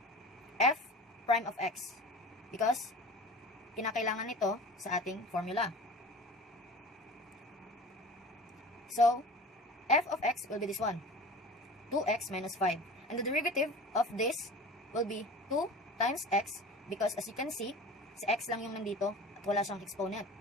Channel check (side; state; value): both; normal; correlation 0.37